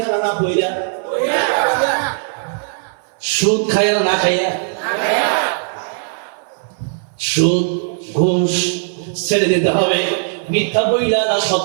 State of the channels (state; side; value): silent; left; 59 dB below the other